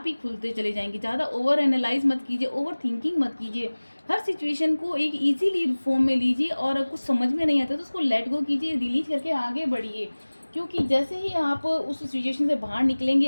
ही खुलते चले जाएंगे। ज़्यादा ओवर एनालाइज मत कीजिए, ओवर थिंकिंग मत कीजिए। हर सिचुएशन को एक इजीली फॉर्म में लीजिए, और कुछ समझ में नहीं आता तो उसको लेट गो कीजिए, डिलीट करके आगे बढ़िए। क्योंकि जैसे ही आप उस सिचुएशन से बाहर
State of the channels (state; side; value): inverted; both; correlation -1.00